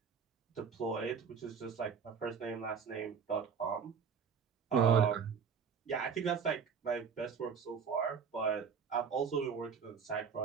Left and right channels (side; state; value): left; quieter; 6.4 dB